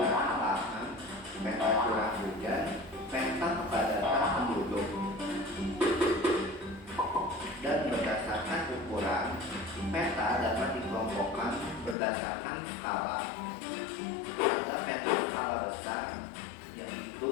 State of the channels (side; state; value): right; drops out; at 12.0 s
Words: lahan, peta curah hujan, peta kepadatan penduduk. Dan berdasarkan ukuran, peta dapat dikelompokkan berdasarkan skala. Ada peta skala besar, yaitu